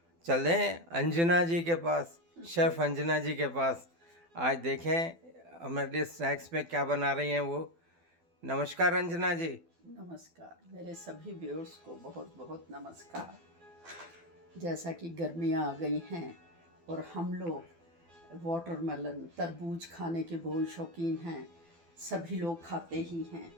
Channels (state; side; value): late; left; 12 ms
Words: चल रहे हैं अंजना जी के पास, शेफ़ अंजना जी के पास। आज देखें हमारे लिए स्नैक्स में क्या बना रही हैं वो। नमस्कार अंजना जी। नमस्कार, मेरे सभी व्यूअर्स को बहुत बहुत नमस्कार। जैसा कि गर्मियाँ आ गई हैं और हम लोग वाटरमेलन तरबूज खाने के बहुत शौकीन हैं, सभी लोग खाते ही हैं।